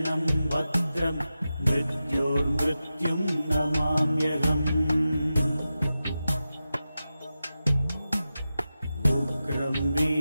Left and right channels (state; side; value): inverted; both; correlation -0.92